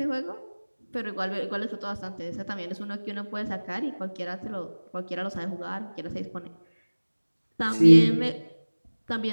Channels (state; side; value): inverted; both; correlation -1.00